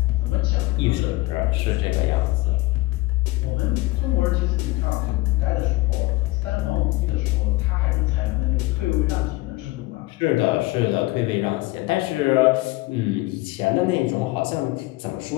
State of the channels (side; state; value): right; quieter; 19.9 dB